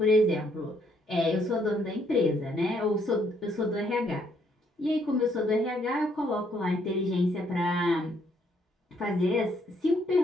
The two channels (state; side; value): normal; both; correlation 0.70